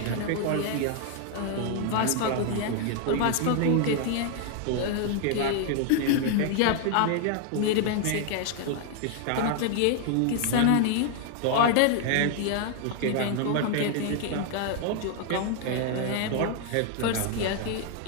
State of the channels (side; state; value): both; different; correlation 0.00